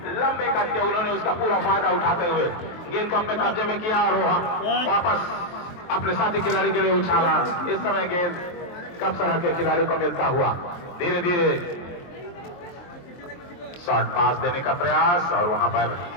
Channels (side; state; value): right; late; 23 ms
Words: लंबे कट के उन्होंने उसका पूरा फायदा उठाते हुए गेंद को अपने कब्जे में किया और वापस अपने साथी खिलाड़ी के लिए उछाला। इस समय गेंद कप्सरा के खिलाड़ी को मिलता हुआ धीरे धीरे शॉर्ट पास देने का प्रयास और वहां पर